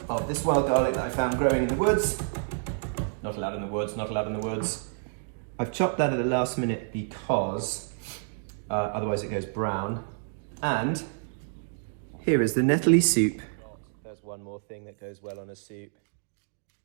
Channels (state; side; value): silent; left; digital silence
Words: of this wild garlic that I found growing in the woods. Not allowed in the woods, not allowed in the woods. I've chopped that at the last minute because otherwise it goes brown. And here is the Nettle soup. There's one more thing that goes well on a soup.